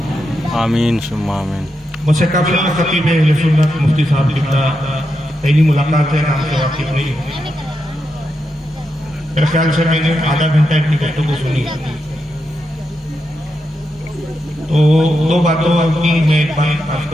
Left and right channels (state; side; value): normal; both; correlation 0.85